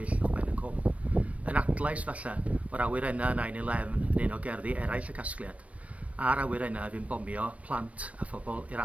uwchben y cwm. Yn adlais falle o'r awyrennau 9/11 yn un o gerddi eraill y casgliad, a'r awyrennau fy'n bomio plant a phobl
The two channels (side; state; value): left; late; 0.065 ms